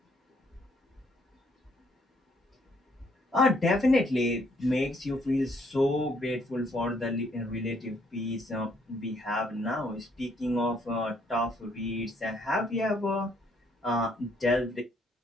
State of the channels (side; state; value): both; normal; correlation 0.68